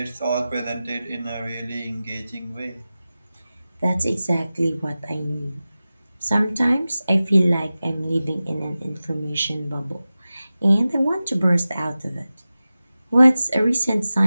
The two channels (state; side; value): inverted; both; correlation -0.95